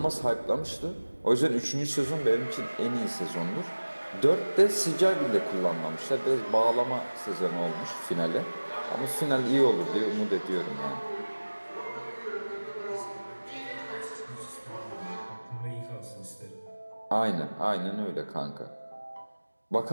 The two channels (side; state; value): both; inverted; correlation -1.00